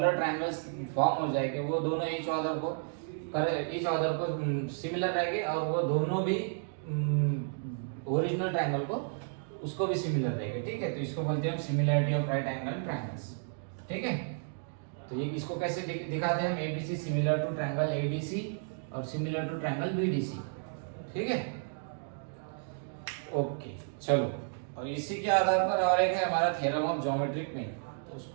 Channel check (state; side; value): silent; left; digital silence